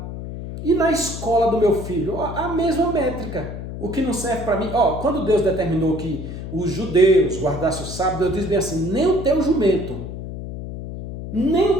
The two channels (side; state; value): left; noise; hum, 8 dB below the sound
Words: E na escola do meu filho, a mesma métrica. O que não serve para mim, quando Deus determinou que os judeus guardassem o sábado, Deus diz bem assim, nem o teu jumento